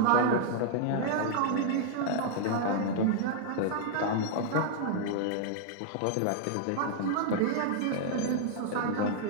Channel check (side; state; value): both; different; correlation -0.01